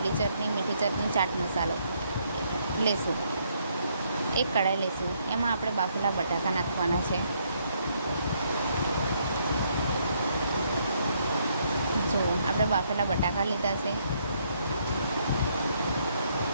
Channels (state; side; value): inverted; both; correlation -0.71